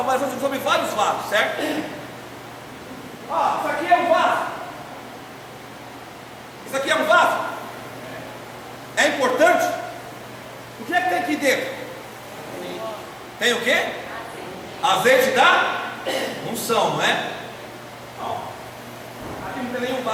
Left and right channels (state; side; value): identical; both; correlation 1.00